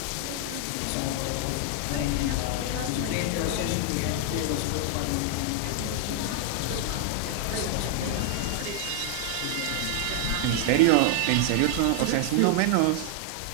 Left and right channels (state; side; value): different; both; correlation 0.00